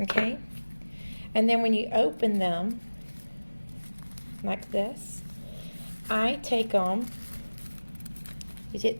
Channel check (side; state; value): both; inverted; correlation -1.00